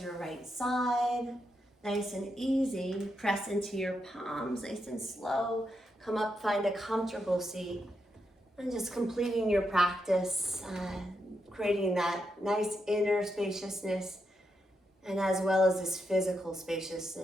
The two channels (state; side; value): normal; both; correlation 0.83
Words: your right side, nice and easy. Press into your palms, nice and slow. Come up, find a comfortable seat, and just completing your practice, creating that nice inner spaciousness, and as well as this physical